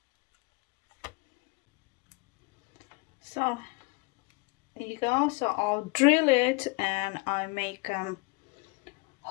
So there you go. So I'll drill it and I make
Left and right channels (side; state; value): right; quieter; 27.1 dB